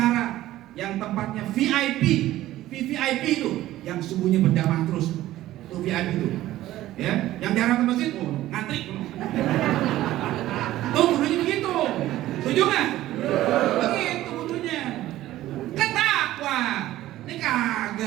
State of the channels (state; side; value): quieter; left; 14.9 dB